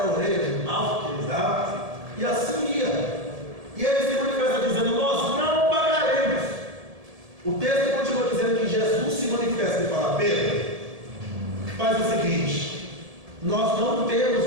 a orelha de mal que ele dava, e assim ia. E ele se manifesta dizendo: nós não pagaremos. O texto continua dizendo que Jesus se manifesta e fala: Pedro, faz o seguinte, nós não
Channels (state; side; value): late; left; 1.7 ms